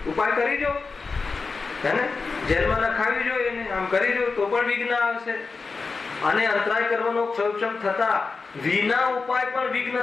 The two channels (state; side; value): quieter; right; 4.4 dB